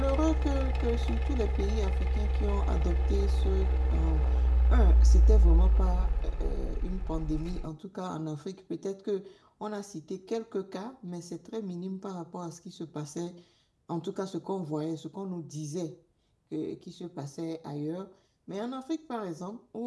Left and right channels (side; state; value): both; identical; correlation 1.00